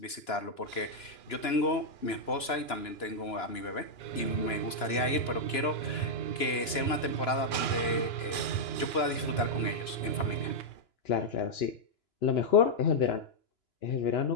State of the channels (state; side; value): late; right; 2.9 ms